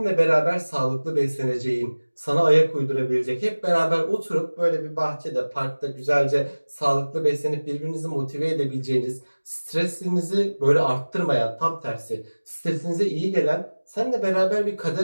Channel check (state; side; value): inverted; both; correlation -1.00